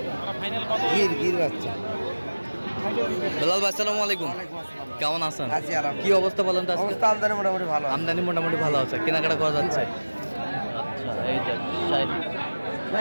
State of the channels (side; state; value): both; inverted; correlation -1.00